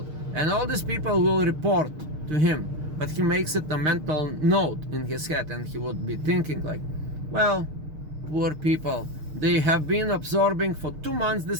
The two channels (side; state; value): left; late; 6.5 ms